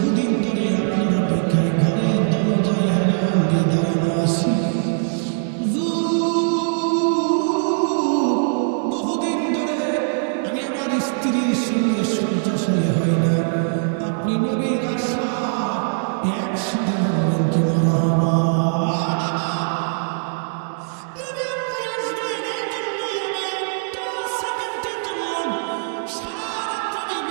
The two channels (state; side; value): silent; left; digital silence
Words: ধরে আপনার অপেক্ষায় ঘরে দরজায় হেলান দিয়ে দাঁড়ানো আছি। বহুদিন ধরে আমি আমার স্ত্রীর সঙ্গে শয্যাশায়ী হই না। আপনি নবীর আশায় একসাথে বলবেন কি মারহাবা। নবী আপনি আসবেন এই জন্য আমি একটা সেকেন্ডের জন্য সারা রাত আমি